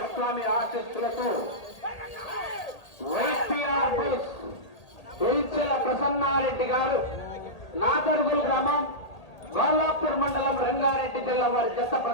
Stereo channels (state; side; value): late; right; 1.8 ms